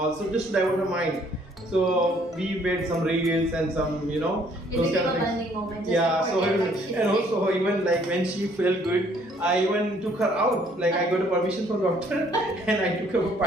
so just to divert her mind. So we made some reels and some, those kind of things. Moment, Yeah. So and also even like when she felt good, I even took her out. Like I got a permission from doctor and I took her for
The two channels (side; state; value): both; normal; correlation 0.63